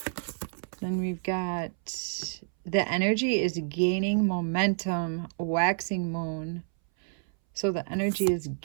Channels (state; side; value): silent; left; 59 dB below the other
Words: Then we've got, the energy is gaining momentum, waxing moon. So the energy is